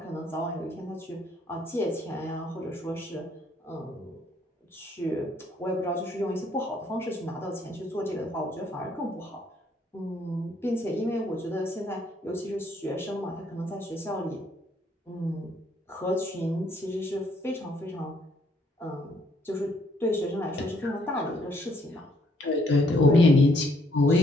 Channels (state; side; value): normal; both; correlation 0.68